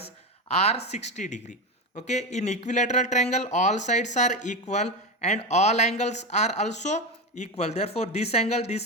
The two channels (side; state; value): both; normal; correlation 0.17